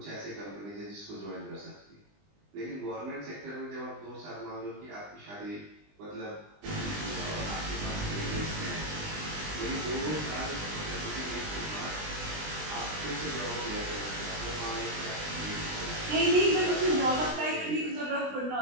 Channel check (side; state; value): left; late; 20 ms